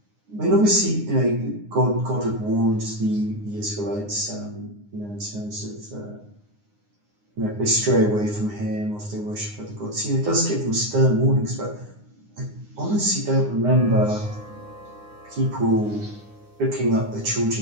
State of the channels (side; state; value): left; late; 9.7 ms